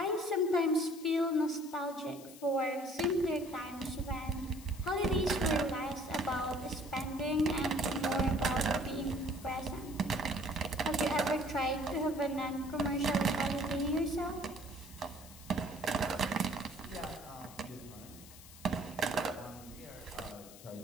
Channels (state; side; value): noise; left; hiss, 18 dB below the sound